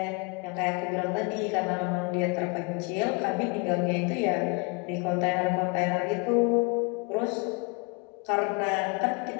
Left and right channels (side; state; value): right; quieter; 31.3 dB